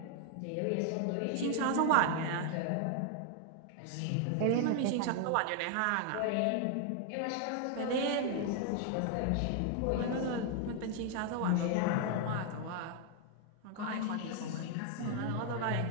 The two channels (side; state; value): both; different; correlation 0.00